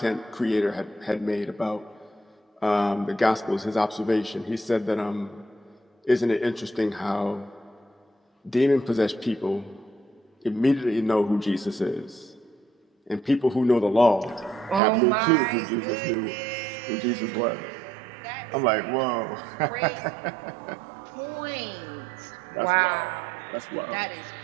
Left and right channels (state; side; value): drops out; left; at 14.8 s